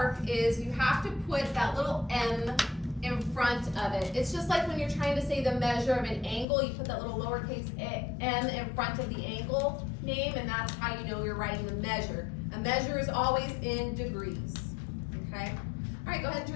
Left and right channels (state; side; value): drops out; right; at 6.5 s